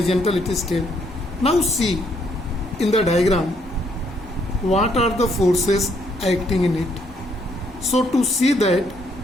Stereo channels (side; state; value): both; normal; correlation 0.70